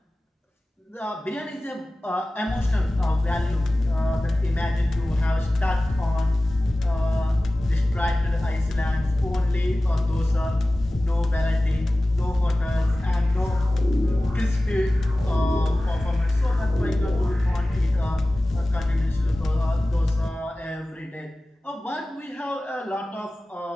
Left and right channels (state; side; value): normal; both; correlation 0.97